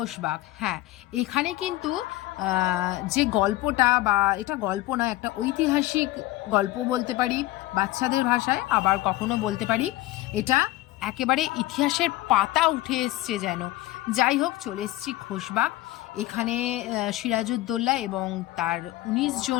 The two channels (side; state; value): right; quieter; 17.4 dB